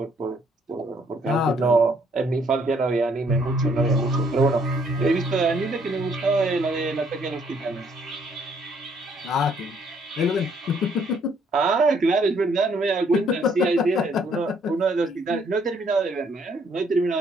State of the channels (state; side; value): normal; both; correlation 0.66